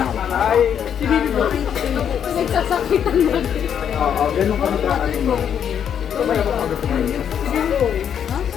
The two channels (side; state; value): right; quieter; 8.5 dB